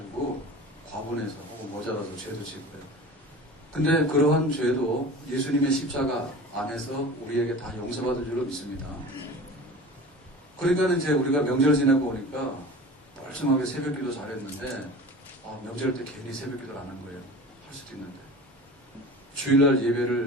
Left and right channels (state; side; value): normal; both; correlation 0.37